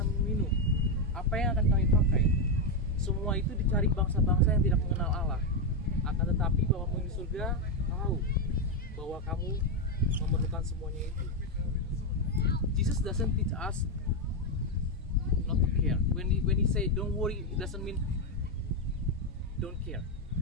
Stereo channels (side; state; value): both; normal; correlation 0.05